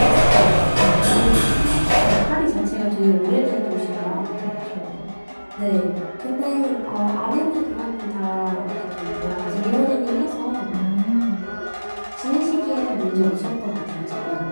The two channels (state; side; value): inverted; both; correlation -1.00